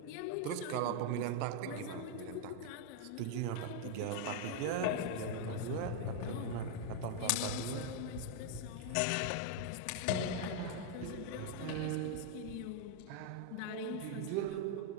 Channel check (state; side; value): different; both; correlation 0.00